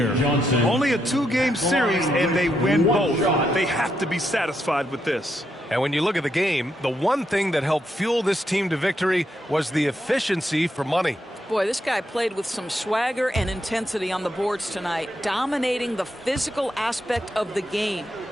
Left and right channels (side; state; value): both; normal; correlation 0.80